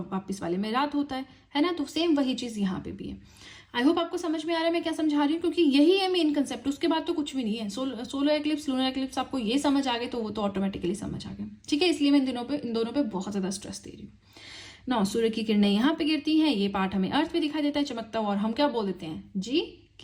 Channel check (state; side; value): identical; both; correlation 1.00